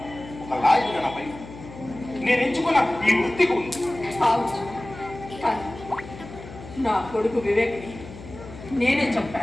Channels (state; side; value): noise; left; hum, 15 dB below the sound